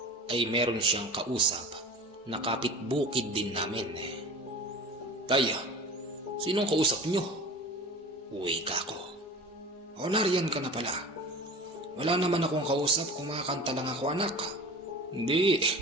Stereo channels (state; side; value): normal; both; correlation 0.37